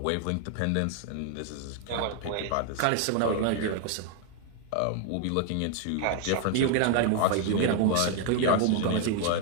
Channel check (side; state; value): both; different; correlation 0.00